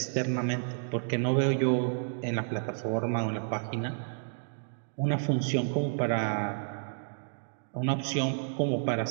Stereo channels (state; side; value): silent; left; digital silence